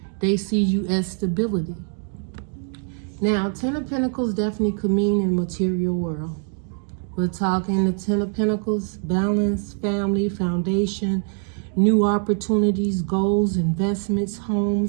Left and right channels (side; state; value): left; silent; 55 dB below the other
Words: They see you as stability. Now, Ten of Pentacles definitely could mean in the material world. We're talking the Ten of Pentacles, balance, family, foundation, new opportunities, goals, investments,